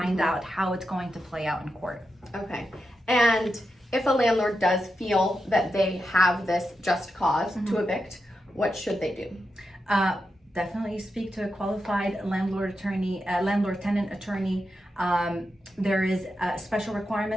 out how it's going to play out in court. Okay. And if a landlord does feel that they have this just cause to evict, what should they do? Definitely speak to a qualified landlord-tenant attorney. There is special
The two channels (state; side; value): normal; both; correlation 0.88